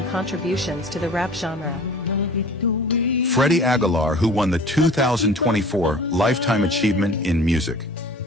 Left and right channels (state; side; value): normal; both; correlation 0.44